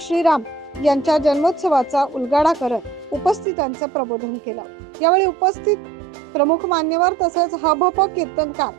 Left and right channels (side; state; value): left; drops out; at 3.5 s